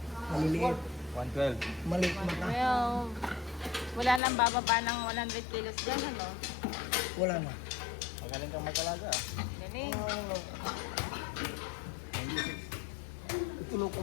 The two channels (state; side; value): drops out; right; at 4.2 s